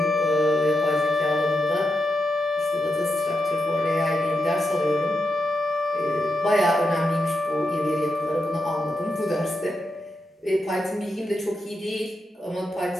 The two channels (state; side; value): normal; both; correlation 0.86